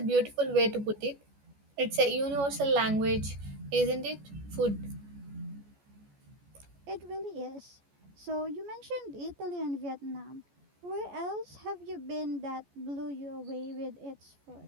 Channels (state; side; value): late; left; 14 ms